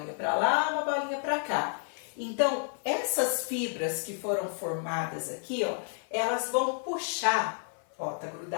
para lá, uma bolinha para cá. Então, essas fibras que foram formadas aqui, ó, elas vão puxar, ó, tá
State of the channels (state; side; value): silent; right; 57 dB below the other